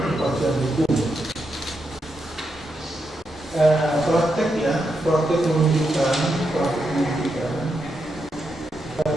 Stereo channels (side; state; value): both; normal; correlation 0.84